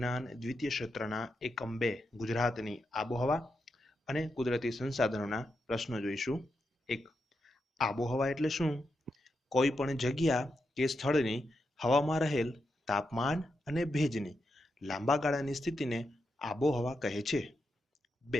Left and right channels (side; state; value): both; normal; correlation 0.85